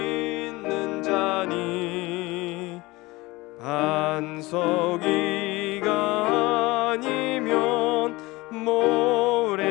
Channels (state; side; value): quieter; right; 21.6 dB